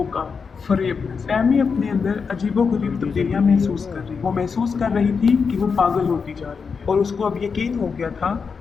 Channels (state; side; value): quieter; right; 5.5 dB